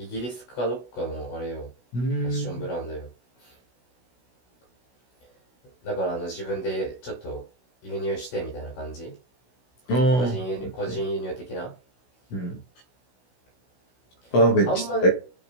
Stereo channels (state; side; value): late; right; 16 ms